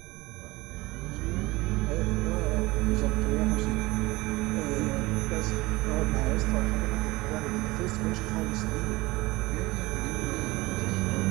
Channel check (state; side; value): quieter; left; 20.9 dB